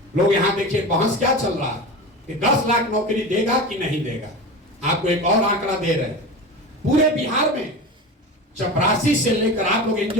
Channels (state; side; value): normal; both; correlation 0.28